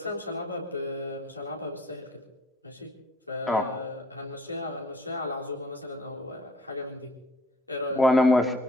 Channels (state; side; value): normal; both; correlation 0.55